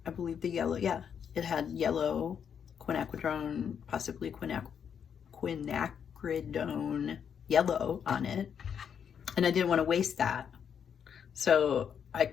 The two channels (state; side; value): quieter; right; 7.7 dB